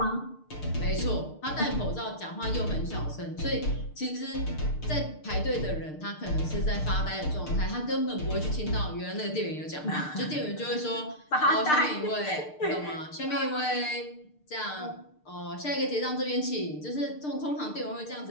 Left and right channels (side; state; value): right; late; 6.6 ms